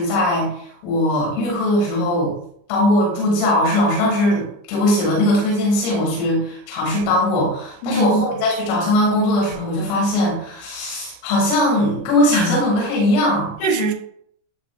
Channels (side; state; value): right; late; 34 ms